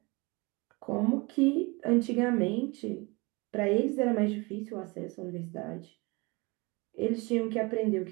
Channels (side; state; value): left; quieter; 26.2 dB